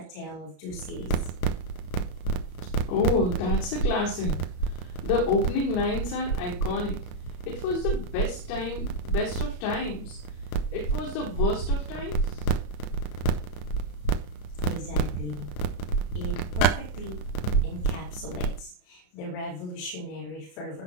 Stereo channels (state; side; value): late; right; 33 ms